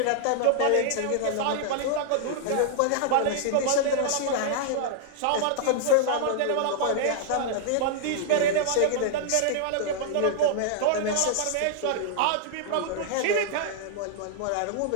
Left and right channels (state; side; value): different; both; correlation -0.01